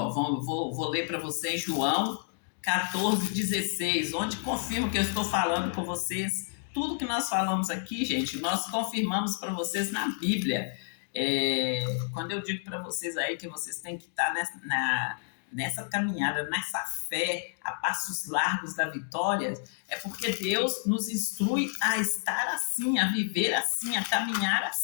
Vou ler para vocês João 14:16, onde confirma que eu estou falando com vocês. Tudo que nós falamos aqui, gente, nós confirmamos para vocês na Bíblia. Quando eu digo para vocês aí que vocês têm que estar nessa caminhada, nessa fé, a passos largos da vitória, é porque Deus nos instrui a estar assim, a viver assim, a caminhar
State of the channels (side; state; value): right; silent; digital silence